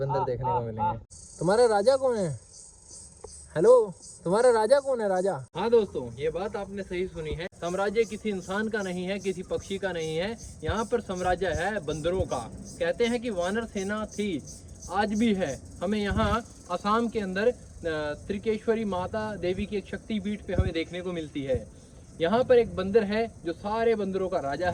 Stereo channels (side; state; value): both; identical; correlation 1.00